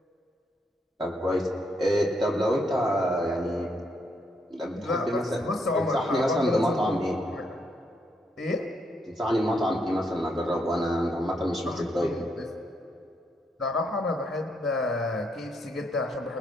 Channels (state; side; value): normal; both; correlation 0.76